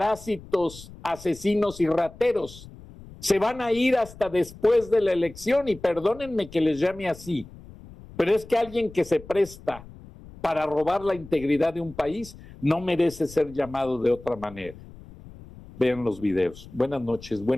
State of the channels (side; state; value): left; noise; rumble, 18 dB below the sound